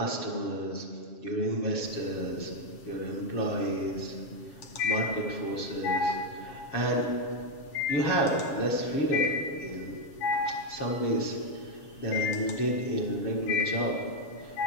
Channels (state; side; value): late; right; 7.3 ms